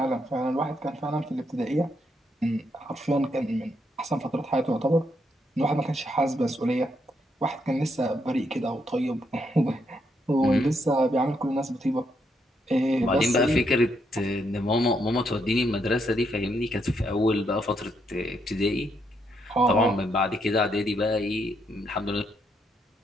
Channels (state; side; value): normal; both; correlation 0.77